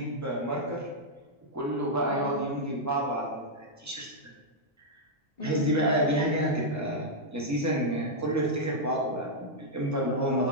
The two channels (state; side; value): normal; both; correlation -0.05